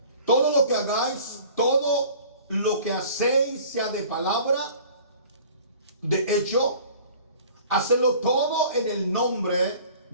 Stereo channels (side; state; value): both; inverted; correlation -0.47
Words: Todo lo que hagáis, todo lo que hacéis, sea de palabra, de hecho, hacedlo todo en el nombre